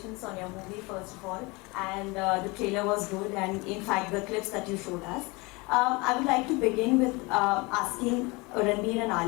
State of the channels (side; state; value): right; quieter; 25.7 dB